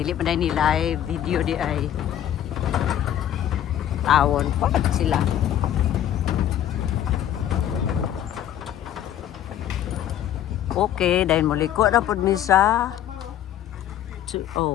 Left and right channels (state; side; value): quieter; right; 11.1 dB